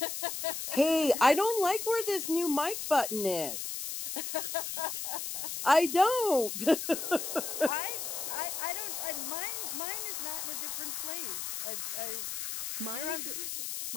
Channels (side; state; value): left; noise; hiss, 4 dB below the sound